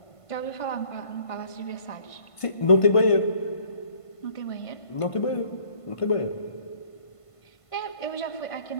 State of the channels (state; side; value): late; right; 1.5 ms